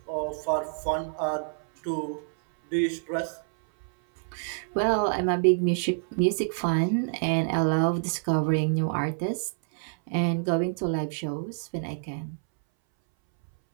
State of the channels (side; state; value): left; silent; 60 dB below the other